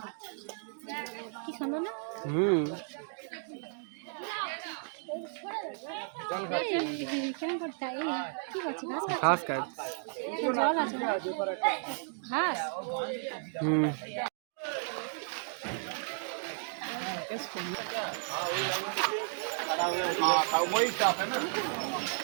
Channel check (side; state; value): left; silent; 55 dB below the other